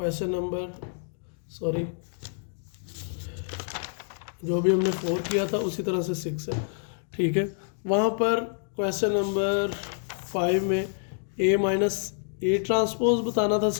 जो भी हमने 4 किया था उसी तरह से 6 है। ठीक है, वहाँ पर क्वेश्चन नंबर 5 में a माइनस ए ट्रांसपोज बताना था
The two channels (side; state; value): right; silent; 60 dB below the other